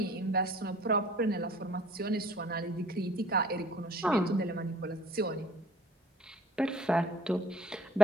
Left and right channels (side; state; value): both; normal; correlation 0.51